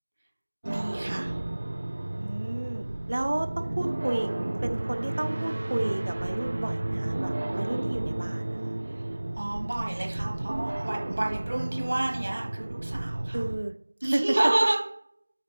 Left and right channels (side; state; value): both; inverted; correlation -1.00